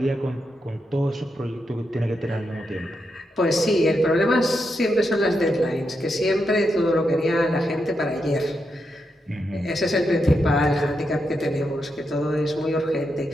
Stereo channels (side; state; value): both; normal; correlation 0.84